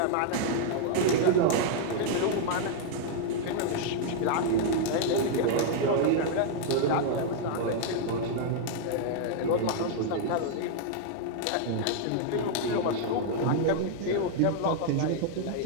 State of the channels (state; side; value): different; both; correlation -0.01